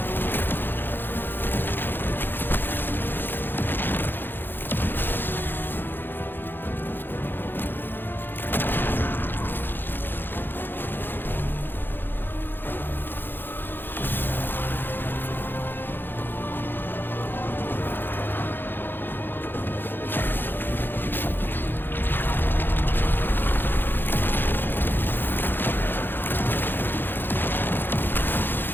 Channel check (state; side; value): late; right; 0.098 ms